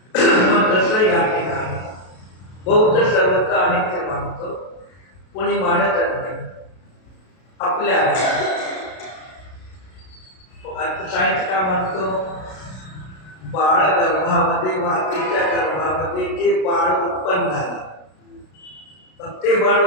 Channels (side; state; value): right; late; 32 ms